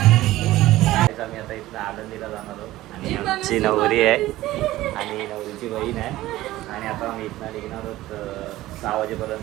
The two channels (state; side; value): quieter; left; 16.3 dB